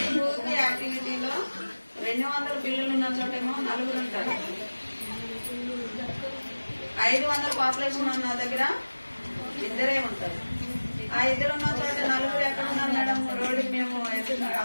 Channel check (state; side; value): inverted; both; correlation -1.00